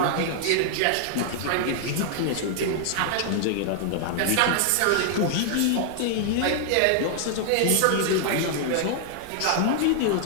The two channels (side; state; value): both; different; correlation -0.01